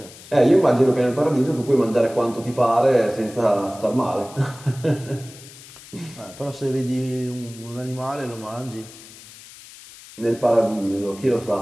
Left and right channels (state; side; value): noise; left; hiss, 19 dB below the sound